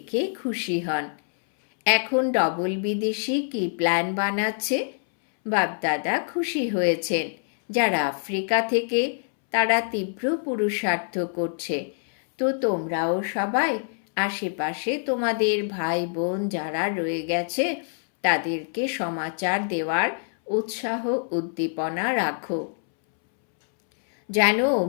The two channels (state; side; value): silent; right; 62 dB below the other